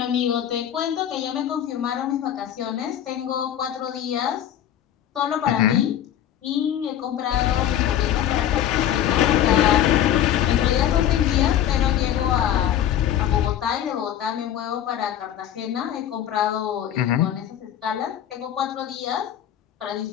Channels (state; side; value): quieter; right; 10.7 dB